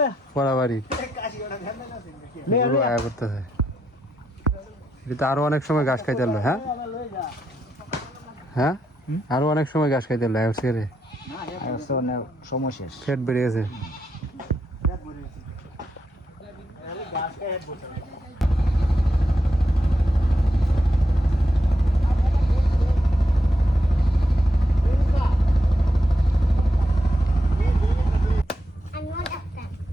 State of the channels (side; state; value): both; normal; correlation 0.83